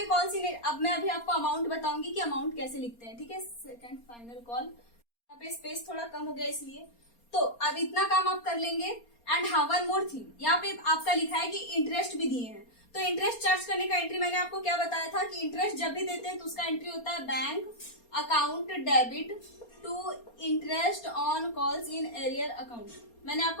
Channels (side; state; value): right; late; 4.3 ms